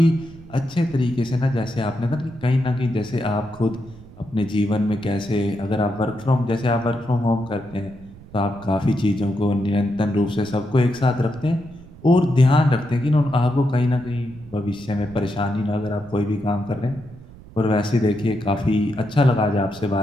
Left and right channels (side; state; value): right; noise; rumble, 19 dB below the sound